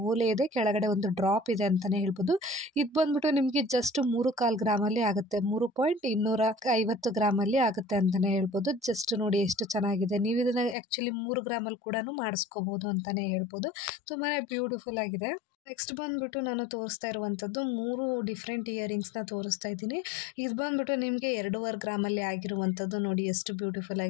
ಓಲೆ ಇದೆ, ಕೆಳಗಡೆ ಒಂದು ಡ್ರಾಪ್ ಇದೆ ಅಂತಲೇ ಹೇಳ್ಬೋದು. ಇದು ಬಂದುಬಿಟ್ಟು ನಿಮಗೆ ಜಸ್ಟ್ 3.25 ಗ್ರಾಮಲ್ಲಿ ಆಗುತ್ತೆ, 3.250 ಗ್ರಾಮಲ್ಲಿ ಆಗುತ್ತೆ ಅಂತಲೇ ಹೇಳ್ಬೋದು. ಜಸ್ಟ್ ನೋಡಿ ಎಷ್ಟು ಚೆನ್ನಾಗಿದೆ. ನೀವು ಇದನ್ನು ಆ್ಯಕ್ಚುಲಿ 3 ಗ್ರಾಮಲ್ಲಿ ಕೂಡ ಮಾಡಿಸ್ಕೋಬೋದು ಅಂತಲೇ ಹೇಳ್ಬೋದು. ತುಂಬಾ ಬ್ಯೂಟಿಫುಲ್ ಆಗಿದೆ. ನೆಕ್ಸ್ಟ್ ಬಂದುಬಿಟ್ಟು ನಾನು ತೋರಿಸ್ತಾ ಇರುವಂಥದ್ದು 3 ಡಿಫ್ರೆಂಟ್ ಇಯರಿಂಗ್ಸ್ನ ತೋರಿಸ್ತಾ ಇದ್ದೀನಿ. ಇದು ಬಂದುಬಿಟ್ಟು ನಿಮಗೆ 2.25 ಗ್ರಾಮಲ್ಲಿ ಆಗಿರುವಂಥದ್ದು. ನೋಡಿ ಎಷ್ಟು ಬ್ಯೂಟಿಫುಲ್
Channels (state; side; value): drops out; right; at 10.8 s